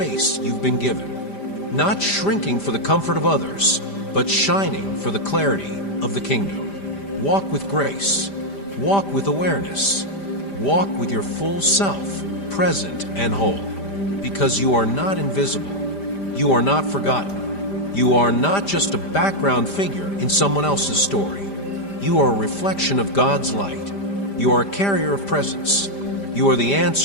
you've been given. Not shrinking for the comfort of others, but shining for the clarity of the kingdom. Walk with grace. Walk with awareness. Walk with your full self, present and whole. Because you are not invisible. You are not forgotten. You are not just a background figure in someone else's story. You are a reflection of God's light. You are a carrier of presence. You are the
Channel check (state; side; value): late; right; 5.0 ms